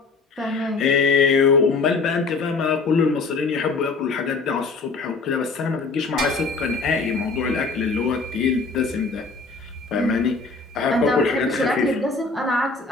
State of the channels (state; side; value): quieter; right; 4.0 dB